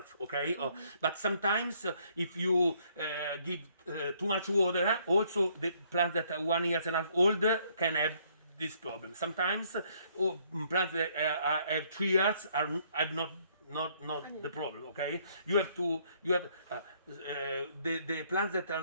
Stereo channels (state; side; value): inverted; both; correlation -0.66